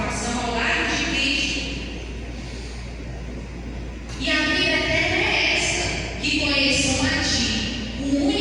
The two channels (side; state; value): both; identical; correlation 1.00